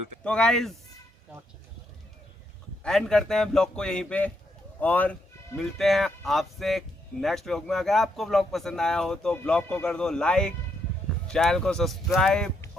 तो गाइज एंड करते हैं ब्लॉग को यहीं पे और मिलते हैं आपसे नेक्स्ट व्लॉग में। अगर आपको व्लॉग पसंद आया हो तो ब्लॉग को कर दो लाइक, चैनल को सब्सक्राइब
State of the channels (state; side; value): normal; both; correlation 0.77